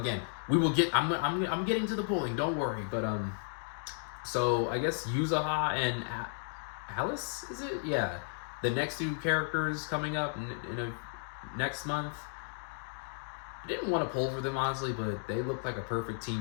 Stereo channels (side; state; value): right; silent; digital silence